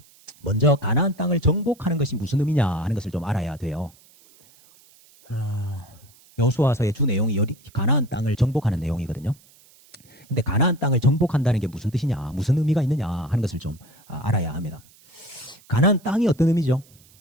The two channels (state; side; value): noise; right; hiss, 28 dB below the sound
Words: 먼저 가나안 땅을 정복하는 것이 무슨 의미냐 하는 것을 좀 알아야 돼요. 여호수아서의 주 내용이 가나안 땅을 정복하는 내용이거든요. 근데 가나안 땅을 정복한다는 게 무슨 뜻이냐, 무슨 의미가 있느냐 하는 것을 좀 알아야 합니다. 가나안 땅이 어떤 의미죠?